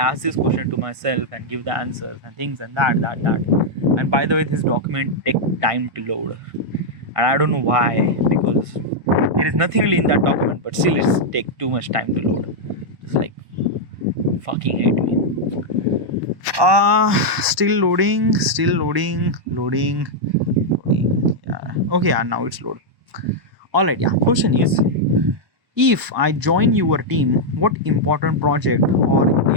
this question to myself and give the answers and things and that. And by the way, this document take time to load, and I don't know why, because there is nothing really in that document, but still it's take too much time to load. It's like fucking hate me. Still loading. Yeah. Okay, yeah, now it's load. All right, yeah. Question is, if I join your team, what important project or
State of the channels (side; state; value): left; late; 1.2 ms